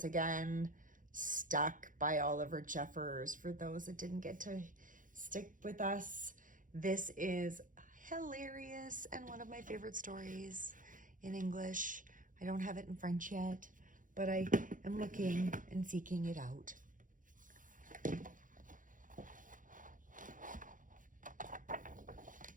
again. Stuck by Oliver Jeffers. For those that didn't get to stick with us, this is hilarious and one of my favorite stories in English. I don't have it in French yet, but I am looking and seeking it out.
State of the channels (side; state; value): left; late; 0.38 ms